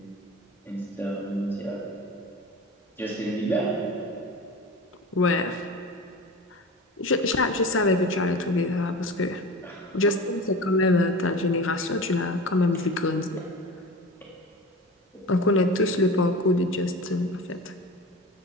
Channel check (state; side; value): normal; both; correlation 0.33